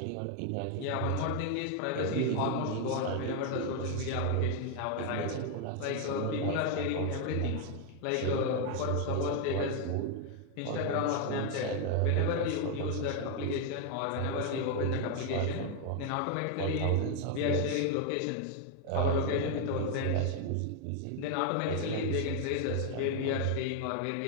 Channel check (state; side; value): different; both; correlation 0.01